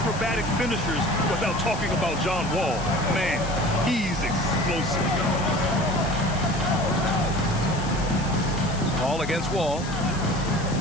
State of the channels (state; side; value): noise; left; hiss, 14 dB below the sound